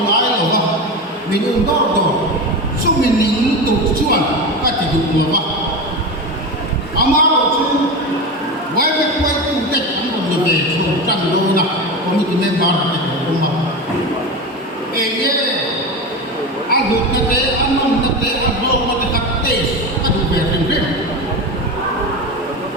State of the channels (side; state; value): both; normal; correlation 0.22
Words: nói là vâng mình uống đó rồi giúp mình nín tổ chuan cái thì được là vâng ama rồi chứ quay tu tết ăn còn được về chỗ trần đô nè có mình nên bảo là cái của mà ê nhé ăn được cái tế ăn ngon cái tế ăn vô mà cái tập tế cái đủ về thành phim